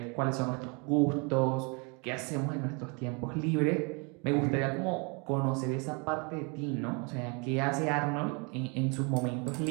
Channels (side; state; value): left; quieter; 32.4 dB